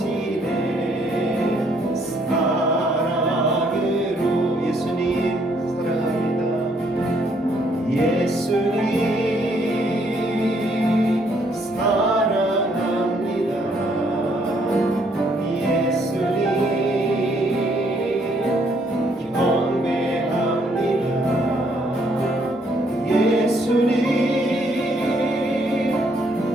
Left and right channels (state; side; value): normal; both; correlation 0.68